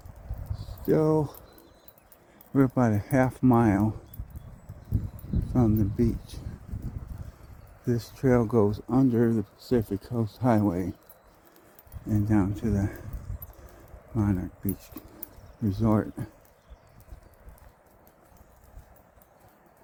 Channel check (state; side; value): identical; both; correlation 1.00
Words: about a half mile from the beach. This trail goes under the Pacific Coast Highway and down to the Monarch Beach Resort.